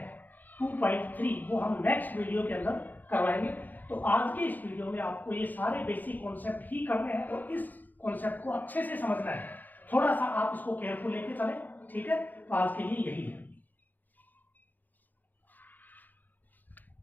2.3 वो हम नेक्स्ट वीडियो के अंदर करवाएंगे। तो आज के इस वीडियो में आपको ये सारे बेसिक कॉन्सेप्ट ही करने हैं और इस कॉन्सेप्ट को अच्छे से समझना है। थोड़ा सा आप इसको केयरफुल लेके चलें, ठीक है। तो आज के लिए यही है।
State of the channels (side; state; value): right; late; 0.085 ms